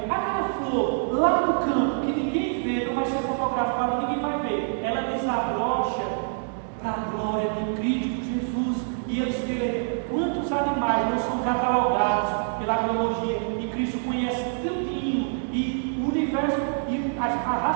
Aquela flor lá no campo, que ninguém vê, não vai ser fotografada, ninguém vai ver, ela desabrocha para a glória de Cristo Jesus. E eles veem quantos animais não são catalogados pela biologia, e Cristo conhece tudinho, e o universo e a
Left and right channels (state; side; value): silent; left; 61 dB below the other